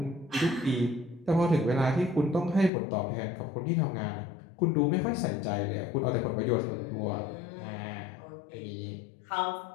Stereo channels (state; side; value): drops out; right; at 2.7 s